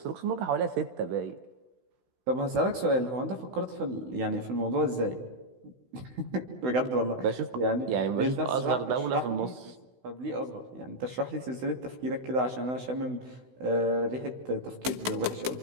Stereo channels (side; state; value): left; late; 16 ms